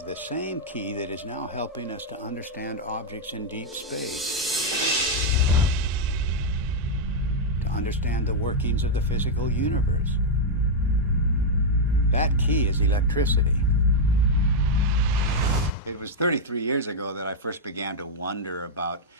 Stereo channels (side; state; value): both; normal; correlation -0.02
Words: the same key that is now helping us to understand objects in deep space, to understand the workings of the physical universe. That key is electricity. It was 33 years ago that I first began to wonder about